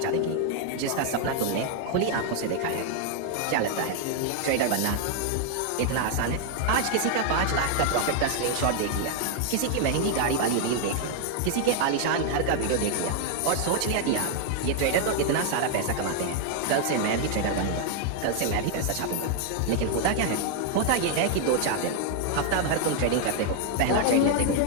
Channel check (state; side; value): different; both; correlation 0.00